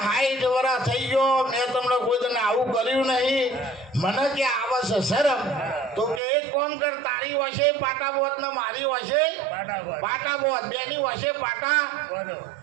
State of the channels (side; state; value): left; drops out; at 6.2 s